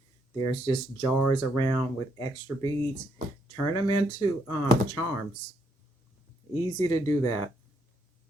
There's just jars around with extra beads. Turn them into charms. Easy to do that.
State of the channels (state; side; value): normal; both; correlation 0.74